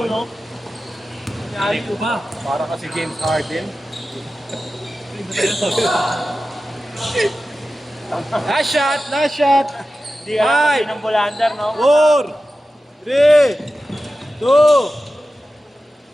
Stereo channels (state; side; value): normal; both; correlation 0.94